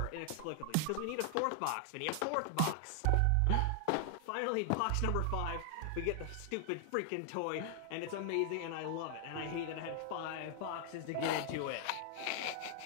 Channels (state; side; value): different; both; correlation 0.00